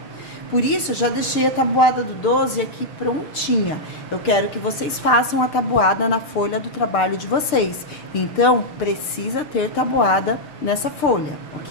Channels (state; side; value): late; right; 6.7 ms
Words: Por isso, eu já deixei a tabuada do 12 aqui prontinha. Eu quero que vocês façam a tabuada na folha do trabalho de vocês. Então, precisa ter tabuada nessa folha,